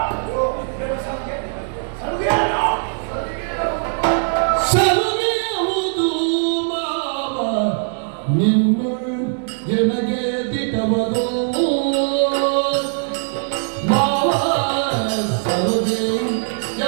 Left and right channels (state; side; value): silent; left; digital silence